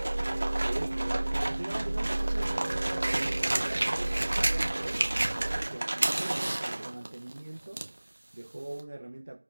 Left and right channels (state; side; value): inverted; both; correlation -1.00